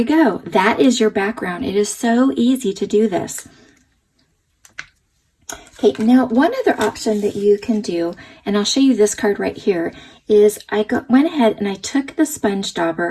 go. That is your background. It is so easy to do this. Okay, now one other option that you can do, and I'll show you this card right here, is I went ahead and I took the sponge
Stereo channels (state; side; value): identical; both; correlation 1.00